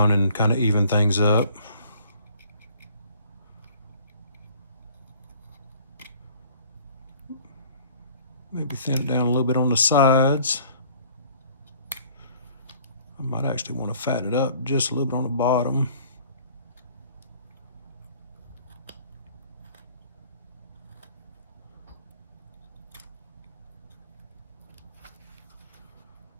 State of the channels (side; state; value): both; inverted; correlation -0.55